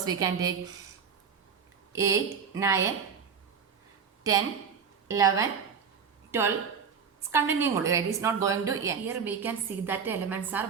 we can take? 8, 9, 10, 11, 12. It's continuing only, right? It's not going to end. Here we can see that the elements are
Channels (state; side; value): quieter; left; 6.5 dB